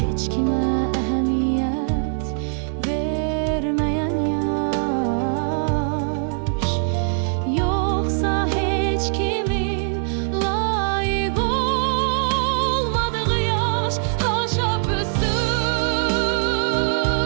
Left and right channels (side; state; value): left; silent; 64 dB below the other